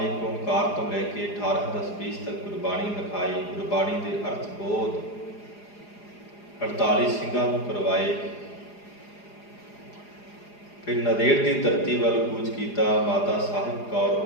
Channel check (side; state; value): right; late; 4.9 ms